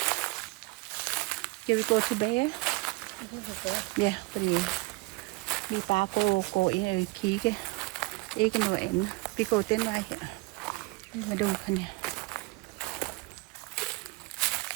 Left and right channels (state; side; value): quieter; left; 25.0 dB